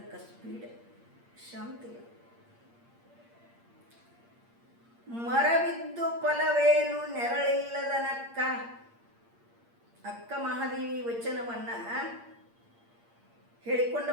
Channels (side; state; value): left; late; 8.6 ms